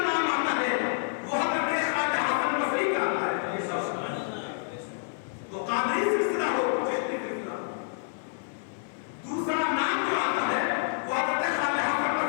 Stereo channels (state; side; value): silent; right; digital silence